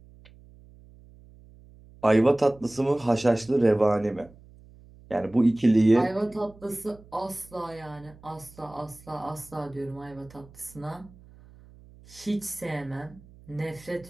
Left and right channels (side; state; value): right; noise; hum, 23 dB below the sound